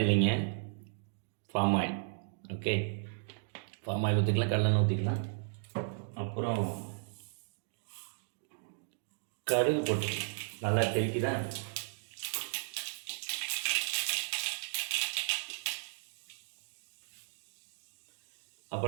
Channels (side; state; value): left; silent; digital silence